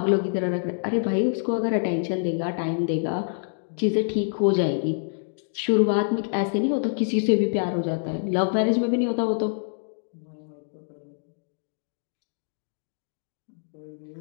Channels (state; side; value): silent; right; digital silence